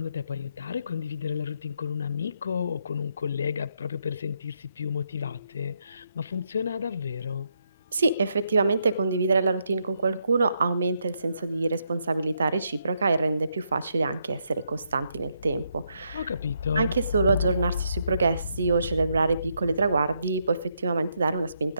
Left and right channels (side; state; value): both; inverted; correlation -0.78